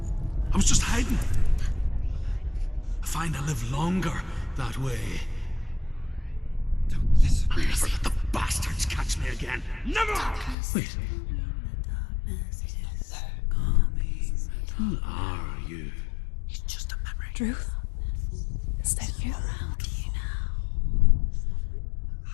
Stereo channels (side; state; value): right; drops out; at 10.6 s